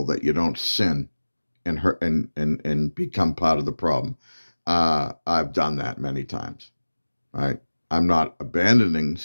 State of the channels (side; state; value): both; inverted; correlation -1.00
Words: that you don't sin and hurt and become part of the problem. I've done that many times, right? I'm not abandoning